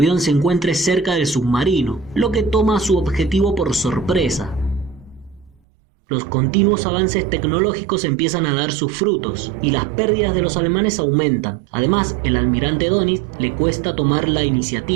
se encuentre cerca del submarino, lo que toma a su objetivo por sorpresa. Los continuos avances tecnológicos empiezan a dar sus frutos y las pérdidas de los alemanes aumentan. Además, el almirante Dönitz le cuesta tomar la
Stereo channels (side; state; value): left; drops out; at 5.6 s